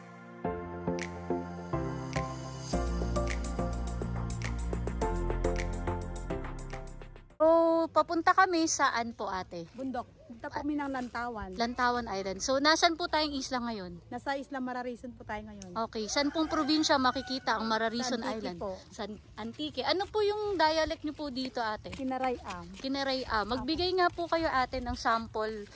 So, papunta kami saan po ate? Bundok. Punta po kami ng Lantawan. Lantawan Island. So, nasan po tayong isla ngayon? Nasa Isla Mararison po tayo ngayon. Okay. Saan pong probinsya makikita ang Mararison Sa Antique Island? po. Sa Antique. Ano po yung dialect niyo po dito ate? Kinarayam. Kineray-am. Magbigay nga po kayo ate ng sample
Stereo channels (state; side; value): identical; both; correlation 1.00